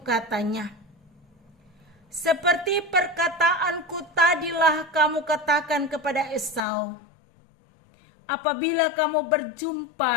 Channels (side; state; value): right; drops out; at 6.6 s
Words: katanya, "Seperti perkataanku tadilah kamu katakan kepada Esau apabila kamu